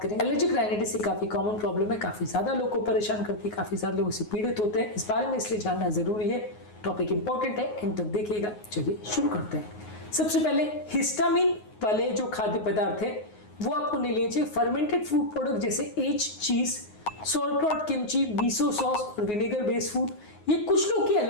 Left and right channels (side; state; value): right; late; 9.5 ms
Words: करेंगे। एलर्जिक राइनाइटिस एक काफ़ी कॉमन प्रॉब्लम है, काफ़ी ज़्यादा लोगों को परेशान करती है, काफ़ी ज़्यादा लोग इससे पीड़ित होते हैं। इस बारे में इसलिए जानना ज़रूरी है। टॉपिक इंपॉर्टेंट है, एंड तक देखिएगा। चलिए शुरू करते हैं। सबसे पहले हिस्टामिन वाले जो खाद्य पदार्थ है वो आपको नहीं लेने चाहिए। फर्मेंटेड फूड प्रोडक्ट जैसे एज चीज, सोरक्रॉट, किमची, मिसो सॉस और विनेगर बेस्ड फूड, ये कुछ लोग की